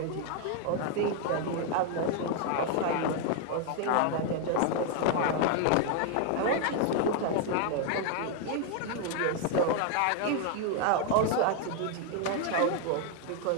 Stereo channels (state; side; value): different; both; correlation 0.01